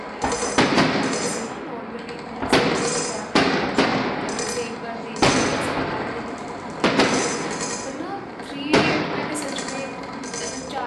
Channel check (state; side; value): identical; both; correlation 1.00